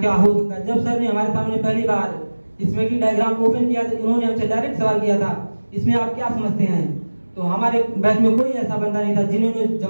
हो सकता है। जब सर ने हमारे सामने पहली बार इसमें की डायग्राम ओपन किया तो उन्होंने हमसे डायरेक्ट सवाल किया था, इसमें आप क्या समझते हैं। तो हमारे बैच में कोई ऐसा बंदा नहीं था जिन्होंने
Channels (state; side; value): inverted; both; correlation -1.00